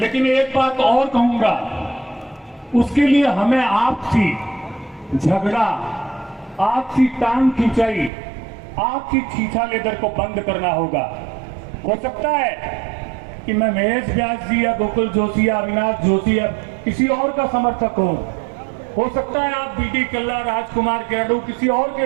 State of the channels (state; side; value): drops out; left; at 8.1 s